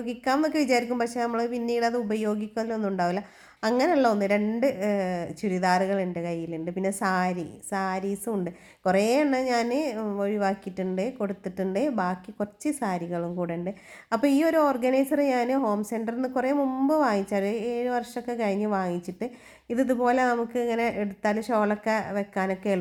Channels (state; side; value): identical; both; correlation 1.00